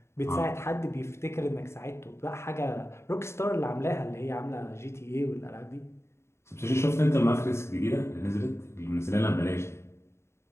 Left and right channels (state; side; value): late; right; 0.13 ms